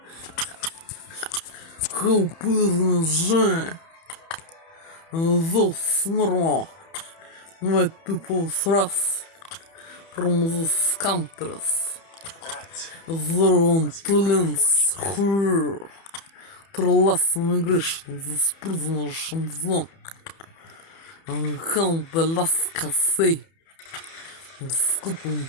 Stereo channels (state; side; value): late; right; 30 ms